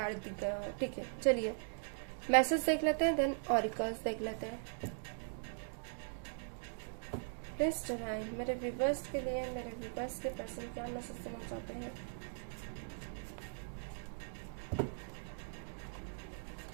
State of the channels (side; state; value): left; silent; digital silence